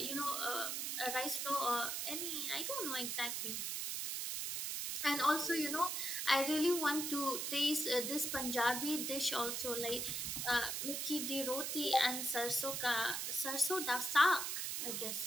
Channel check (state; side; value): noise; right; hiss, 2 dB below the sound